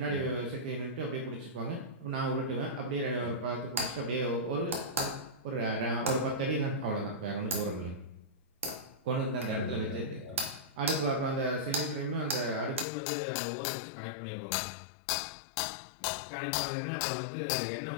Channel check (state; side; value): drops out; right; at 12.9 s